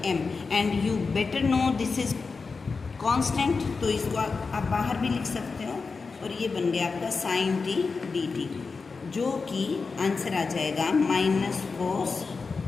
m। And you better know this is constant, तो इसको आप बाहर भी लिख सकते हो। और ये बन गया आपका साइन t dt, जो कि आंसर आ जाएगा माइनस कोस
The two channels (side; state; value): right; quieter; 4.5 dB